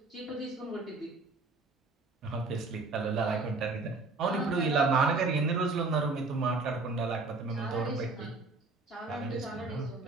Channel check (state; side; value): quieter; left; 3.6 dB